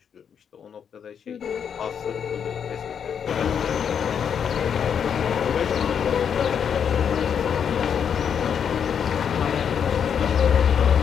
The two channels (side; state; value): right; quieter; 7.7 dB